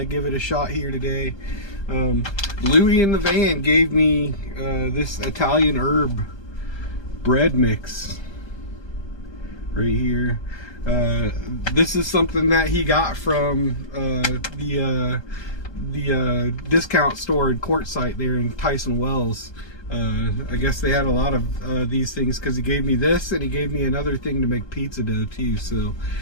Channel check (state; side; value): late; right; 1.2 ms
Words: give it a shot here today. Louie in the van gave me this Italian herb bread mix right here. This is something that he got from the discount store in Quartzsite there in Tyson Wells. I guess they had a lot of these things, because he gave me this and he gave me another thing to make pizza dough too. So